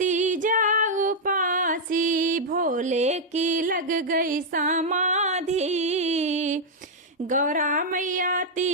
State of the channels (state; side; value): normal; both; correlation -0.03